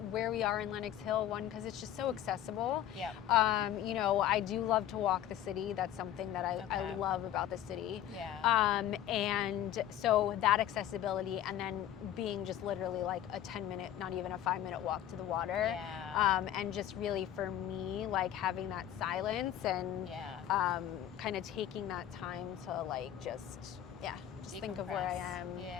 where we are in Lenox Hill, one, because it's just so accessible. Yeah. You know, I do love to walk the city. That's something that I Okay. love about the city. Yeah. And so that accessibility, and then being just literally like a 10-minute, not even a 5-minute walk to the water. Yeah. And just really for me, like having that silence and Yeah. kind of taking that time to like just think of where I Decompress. am,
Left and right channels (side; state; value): right; quieter; 11.4 dB